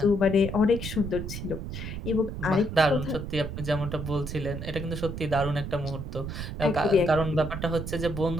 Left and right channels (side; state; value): right; noise; rumble, 6 dB below the sound